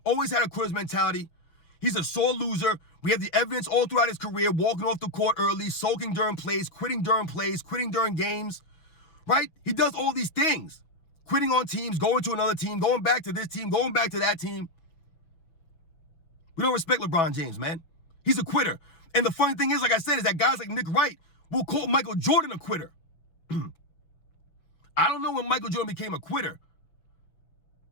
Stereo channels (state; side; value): late; right; 6.2 ms